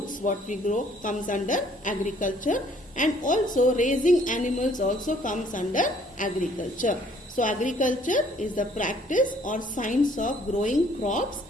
what we grow comes under agriculture, and also raising animals also comes under agriculture. So agriculture is the practice or science of growing crops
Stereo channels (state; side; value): normal; both; correlation 0.60